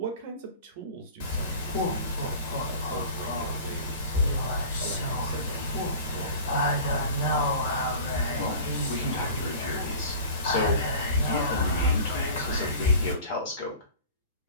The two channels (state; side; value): inverted; both; correlation -0.40